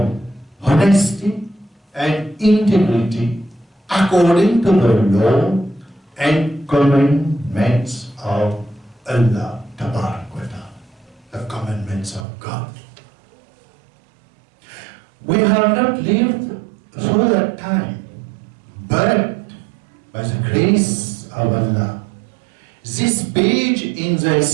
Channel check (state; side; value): drops out; left; at 12.2 s